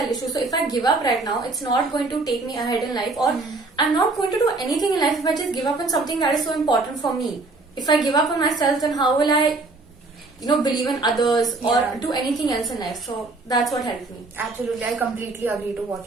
issue, so if I give up right now, it's not going to take me ahead in life, or I'm not going to do anything in life if I just give up on something that is so important for me. If I give up on myself, then how will I believe in others or do anything else in life? So that's what helped me. Absolutely, I completely agree to what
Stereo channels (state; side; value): quieter; left; 3.4 dB